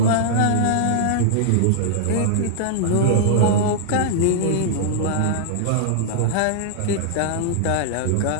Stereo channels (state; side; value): different; both; correlation -0.01